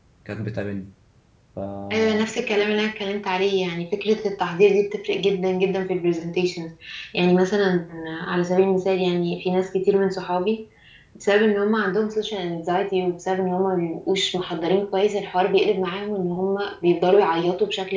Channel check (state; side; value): identical; both; correlation 1.00